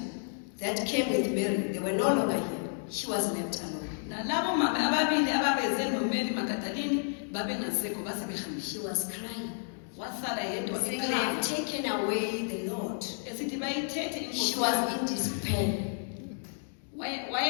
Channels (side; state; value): right; silent; digital silence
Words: that came with Mary, they were no longer here. She was left alone. nalabo mama ababili ababeze noMary Magdalene babengasekho base behambile. She was crying. Wasala yedwa Saying they have taken away the Lord. esithi bayithethe She was in despair.